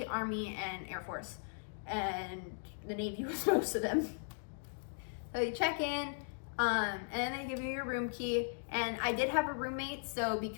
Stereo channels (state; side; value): silent; right; digital silence